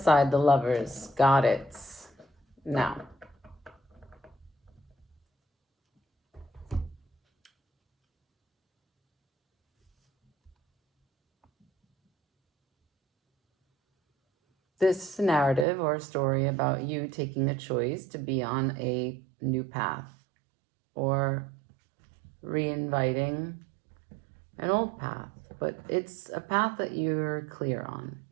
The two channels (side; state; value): left; drops out; at 15.7 s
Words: side, the Lovers. Got it. Now. This is a narrative or a story about you taking a choice to be on a new path or reinviting an old path, but it's a path that you're clear on.